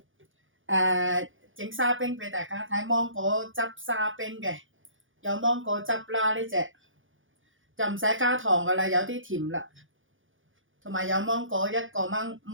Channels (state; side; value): late; left; 0.58 ms